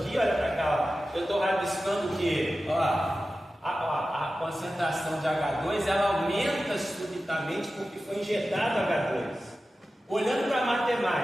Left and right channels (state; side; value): normal; both; correlation 0.94